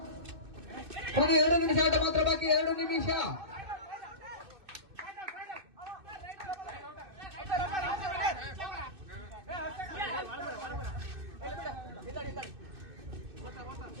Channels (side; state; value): left; late; 2.6 ms